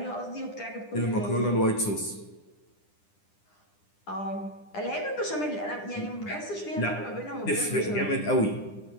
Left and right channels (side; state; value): right; late; 9.9 ms